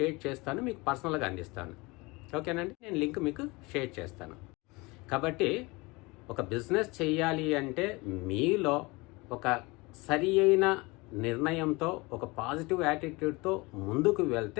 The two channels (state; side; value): quieter; right; 24.6 dB